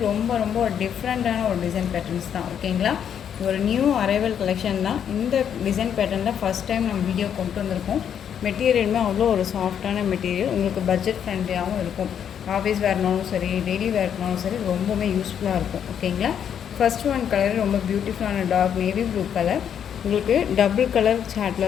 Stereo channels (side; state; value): right; quieter; 8.6 dB